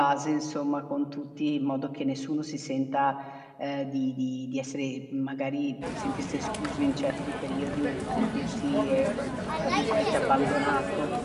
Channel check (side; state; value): both; identical; correlation 1.00